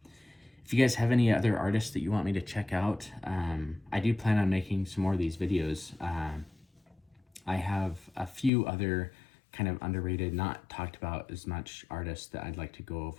If you guys have any other artists that you want me to check out, I do plan on making some more of these videos. I have a few other kind of underrated, not talked about as much artists that I'd like to go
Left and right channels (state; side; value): drops out; right; at 8.5 s